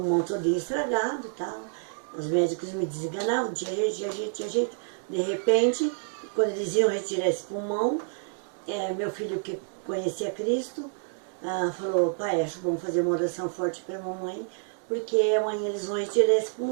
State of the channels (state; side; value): silent; left; digital silence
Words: todo estragado e tal. Os médicos me desenganavam, tinha jeito, tinha jeito, tinha jeito. De repente, quando eles iam retirar esse pulmão, meu filho, que conhecia Cristo, falou: pai, acho bom fazer uma oração forte para a mamãe, porque amanhã eles vão retirar esse